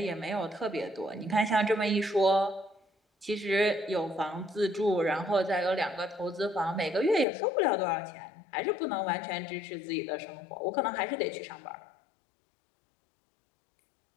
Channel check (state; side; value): drops out; right; at 7.2 s